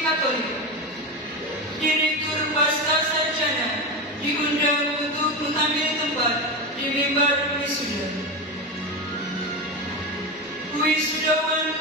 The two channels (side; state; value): both; normal; correlation 0.19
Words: Katolik. Direktur Pasca Sarjana diundang untuk mengambil tempat di mimbar wisuda. Wisudawan